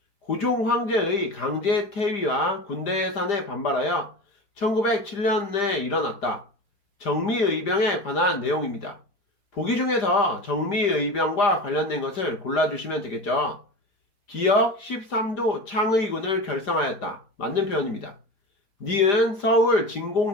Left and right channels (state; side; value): late; right; 5.0 ms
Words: 고종 황제의 강제 퇴위와 군대 해산에 반발하여 1907년에 일어났다. 정미의병에 관한 내용입니다. 보기 중에서 정미의병과 관련된 것을 골라주시면 되겠죠. 기역 13도 창의군을 결성하였다. 맞는 표현입니다. 니은 서울